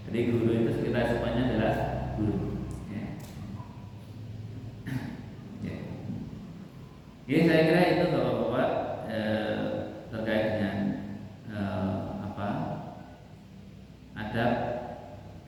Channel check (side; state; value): both; identical; correlation 1.00